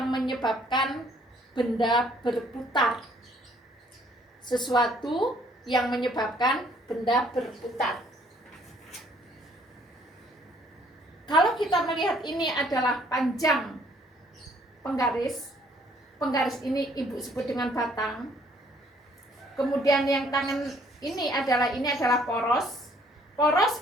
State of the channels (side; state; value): both; normal; correlation 0.62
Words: menyebabkan benda berputar. Sesuatu yang menyebabkan benda berputar. Kalau kita melihat ini adalah panjang penggaris ini Ibu sebut dengan batang. Kemudian yang tangan ini adalah poros.